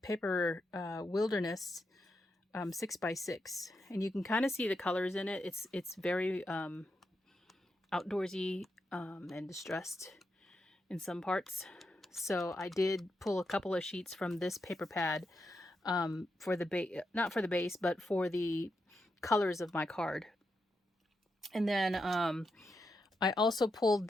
paper wilderness 6x6, and you can kind of see the colors in it. It's very outdoorsy and distressed in some parts. So I did pull a couple of sheets from this paper pad for the base, not for the base, but for the colors of my card. And then I also pulled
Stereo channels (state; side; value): normal; both; correlation 0.85